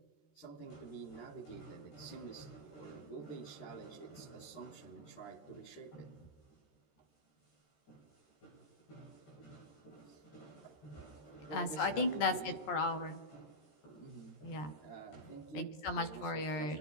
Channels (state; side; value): late; right; 13 ms